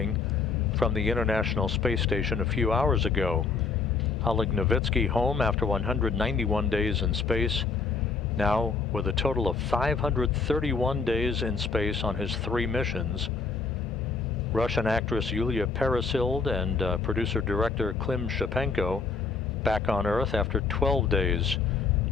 from the International Space Station a few hours ago. Oleg Novitsky home after 191 days in space, now with a total of 531 days in space on his 3 missions. Russian actress Yulia Peresild and producer-director Klim Shapenko back on Earth after 12 days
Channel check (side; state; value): right; quieter; 4.7 dB